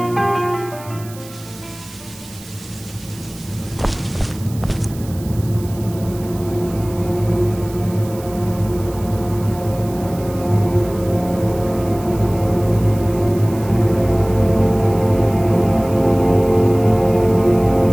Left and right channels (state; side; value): noise; right; hiss, 19 dB below the sound